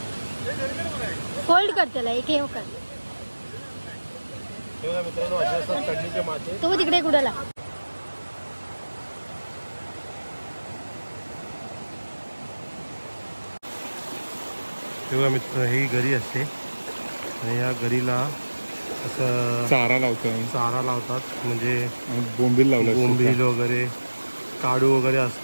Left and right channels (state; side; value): inverted; both; correlation -1.00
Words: फोल्ड कर त्याला एक हे कर. हे बघा मित्रांनो असे असतात कडणीचे मासे. तो तिकडे कुडाला हे बघा मित्र ही गरी असते आणि या गरीला असं चारा लावतात म्हणजे बोंबील वगैरे काडू वगैरे